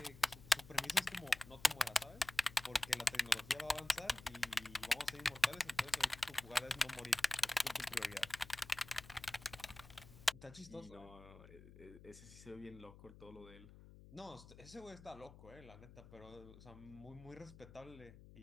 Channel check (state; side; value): noise; left; hum, 18 dB below the sound